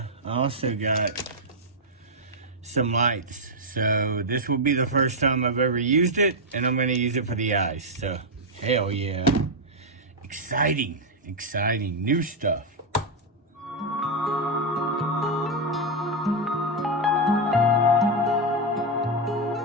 also got some lights. So this will be the first time I've ever used it, and I'm going to use it for the eyes. So Hell yeah. Exciting, exciting, new stuff.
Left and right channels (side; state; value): both; normal; correlation 0.00